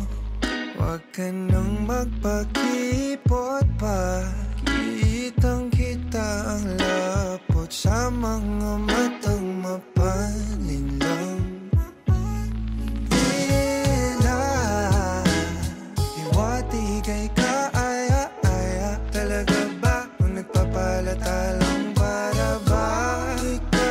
wag ka nang magpakipot pa, kitang-kita ang lapot sa mga matang mapalinlang. Iwati kay kaaya-aya, talaga ba kung nagpapalata lang para ba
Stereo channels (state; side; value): identical; both; correlation 1.00